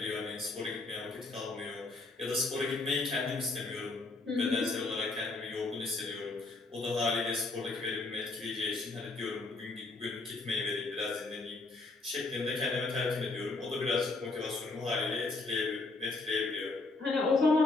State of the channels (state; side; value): quieter; right; 3.4 dB